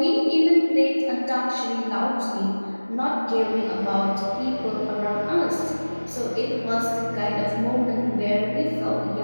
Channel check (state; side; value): inverted; both; correlation -1.00